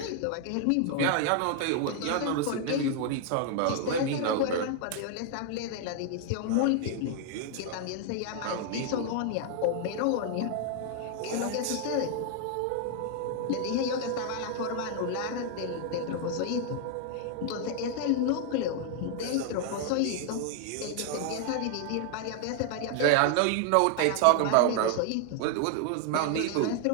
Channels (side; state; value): both; different; correlation 0.00